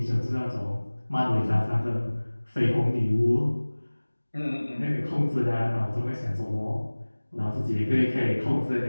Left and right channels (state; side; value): inverted; both; correlation -1.00